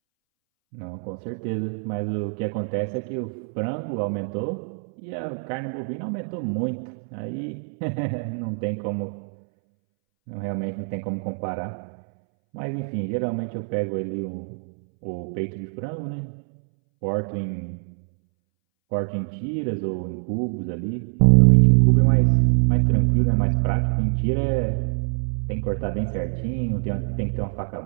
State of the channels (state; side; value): silent; left; 62 dB below the other